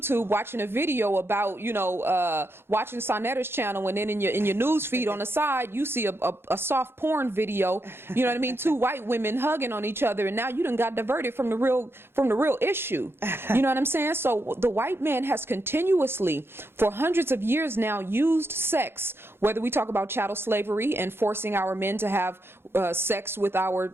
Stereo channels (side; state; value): left; late; 0.11 ms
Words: watching a video about, watching SaNeter's channel, and then in your news feed on the side, you see a soft porn video, you know what I mean? Two white women hugging on each other, and now you done got diverted from the real issue. You know what I'm saying? So the white man has continuously, for hundreds of years now, used sex, whether we talk about chattel slavery and forcing our men to have sex with